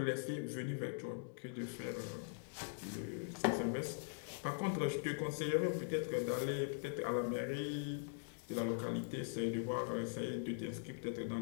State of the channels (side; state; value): right; silent; digital silence